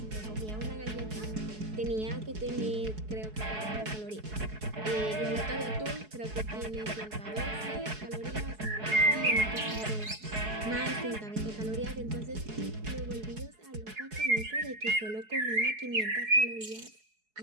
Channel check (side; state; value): left; late; 4.7 ms